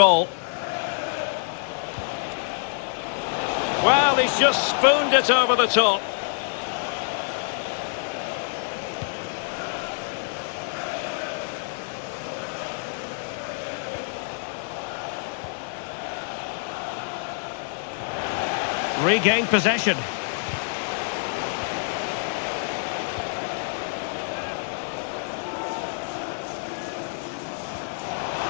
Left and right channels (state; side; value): silent; right; digital silence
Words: Well, he's just spooned it over the top. Regained possession.